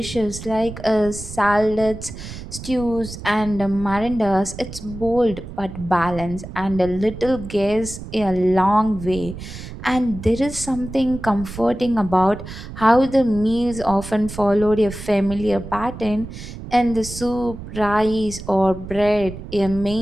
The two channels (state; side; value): noise; right; rumble, 11 dB below the sound